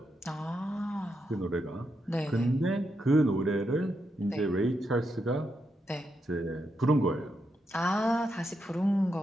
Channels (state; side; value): normal; both; correlation 0.83